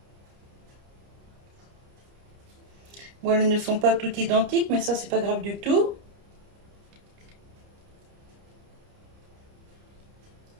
Bon, elles ne sont pas toutes identiques, mais ça, c'est pas grave du tout.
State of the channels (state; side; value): late; left; 30 ms